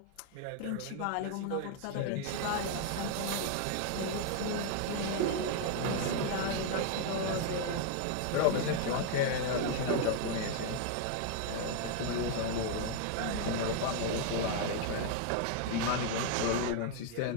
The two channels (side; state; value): both; different; correlation 0.00